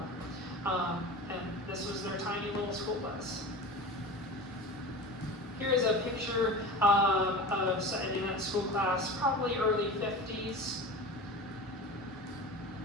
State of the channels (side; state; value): both; normal; correlation 0.32